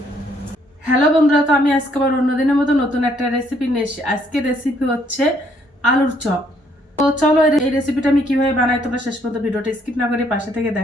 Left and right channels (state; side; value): normal; both; correlation 0.68